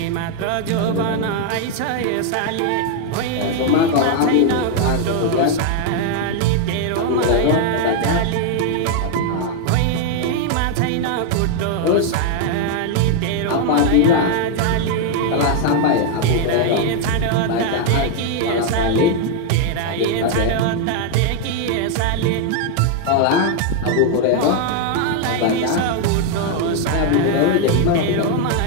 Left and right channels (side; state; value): both; different; correlation 0.00